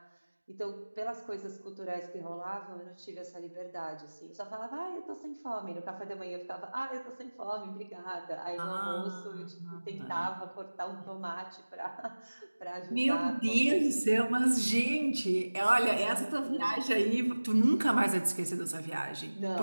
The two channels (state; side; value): inverted; both; correlation -1.00